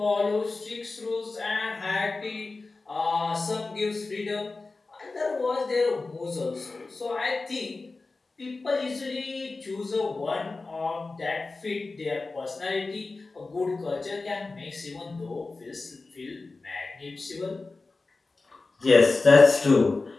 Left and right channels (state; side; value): quieter; right; 3.6 dB